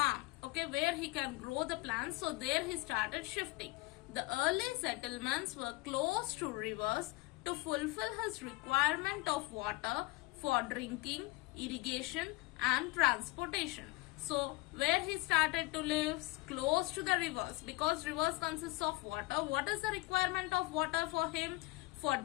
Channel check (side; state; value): right; quieter; 21.6 dB